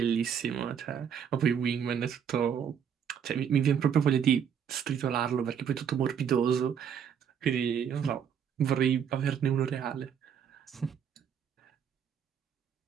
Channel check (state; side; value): quieter; left; 8.0 dB